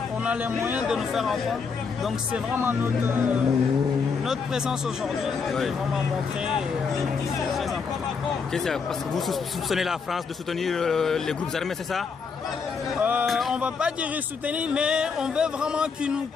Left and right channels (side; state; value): right; quieter; 5.4 dB